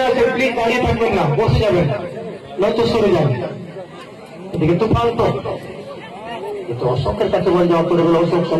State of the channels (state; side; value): identical; both; correlation 1.00